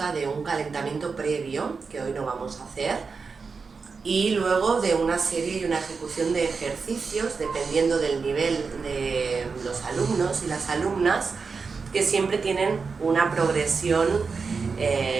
de un calentamiento previo, que hoy no vamos a hacer, y luego de una serie y una ejecución de ejercicios, dependiendo del nivel de los alumnos y las alumnas, que siempre tienen una progresión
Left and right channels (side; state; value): left; quieter; 4.9 dB